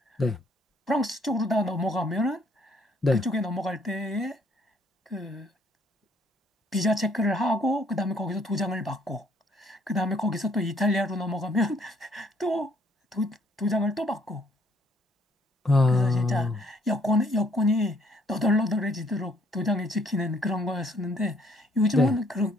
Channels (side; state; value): both; normal; correlation 0.66